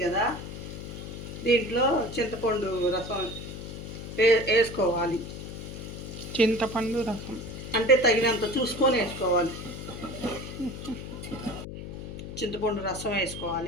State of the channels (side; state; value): left; noise; hum, 9 dB below the sound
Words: కదా, దీంట్లో చింతపండు రసం వేసుకోవాలి. చింతపండు రసం అంటే తగినంత చూసుకొని వేసుకోవాలి. చింతపండు రసం